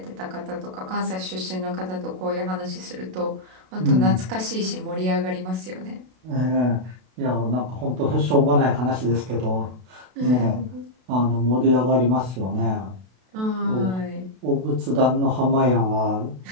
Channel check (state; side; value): late; left; 32 ms